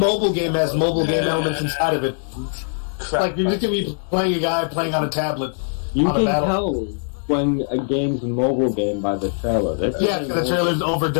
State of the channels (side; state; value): right; silent; 65 dB below the other